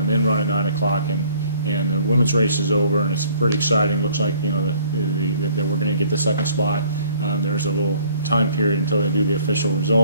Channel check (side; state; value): both; inverted; correlation -0.58